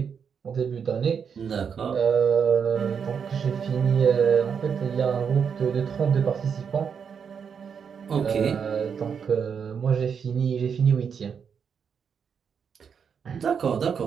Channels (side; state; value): left; quieter; 6.8 dB